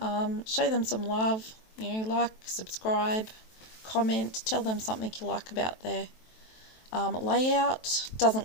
Show them some love, like, subscribe, comment, tell them something you like about their layout.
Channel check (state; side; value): late; right; 23 ms